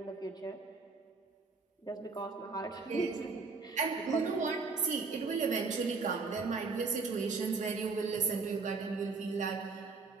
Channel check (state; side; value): quieter; left; 4.4 dB